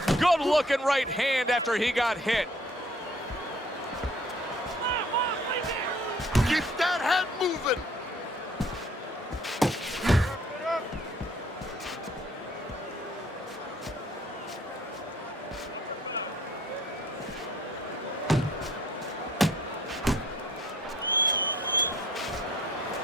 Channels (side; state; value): both; normal; correlation 0.58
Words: Good-looking right hand after he got hit. Keep that head moving.